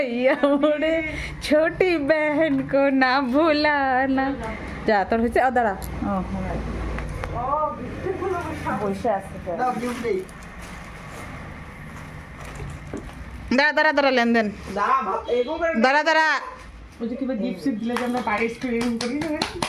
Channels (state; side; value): identical; both; correlation 1.00